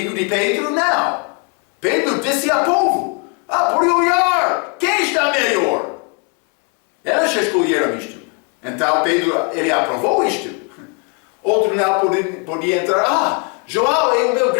de Pedro, não. Pedro disse ao povo, por olhar, quem está melhor? Elas escolheram isto. Então Pedro, ele aprovou isto. Outro não podia entrar, João é o meu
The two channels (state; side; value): quieter; right; 34.0 dB